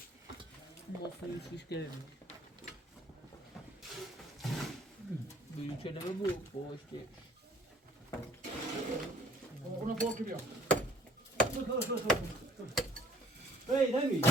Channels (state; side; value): normal; both; correlation 0.57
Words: مفهوم شیش گرمی بگیم چه نمه بود پشتی اونو فوق بیا هی نمی